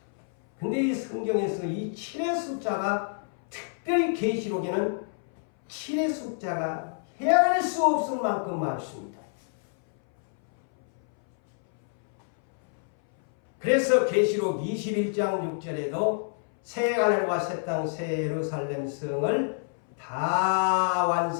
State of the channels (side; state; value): right; silent; 59 dB below the other